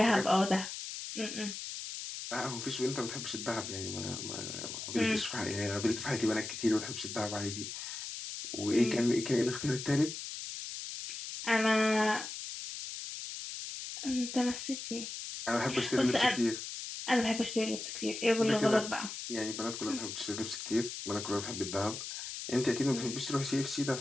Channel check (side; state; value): left; noise; hiss, 7 dB below the sound